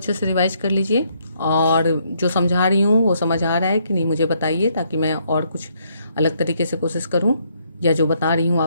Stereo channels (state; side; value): inverted; both; correlation -0.72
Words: से रिवाइज कर लीजिए, और जो समझा रही हूँ वो समझ आ रहा है कि नहीं मुझे बताइए, ताकि मैं और कुछ अलग तरीके से कोशिश करूँ, या जो बता रही हूँ